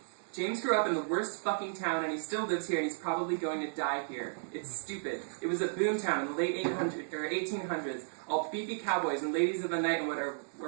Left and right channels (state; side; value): silent; left; 55 dB below the other